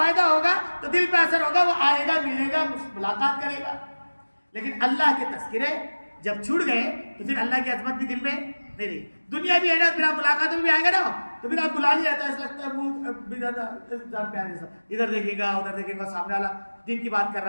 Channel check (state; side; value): inverted; both; correlation -1.00